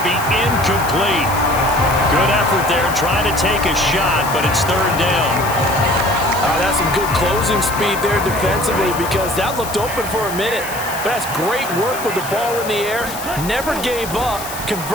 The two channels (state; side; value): noise; left; hiss, 11 dB below the sound